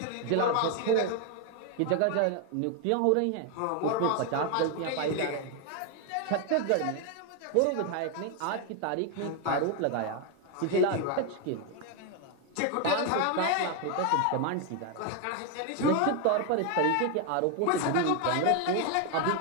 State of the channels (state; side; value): different; both; correlation 0.01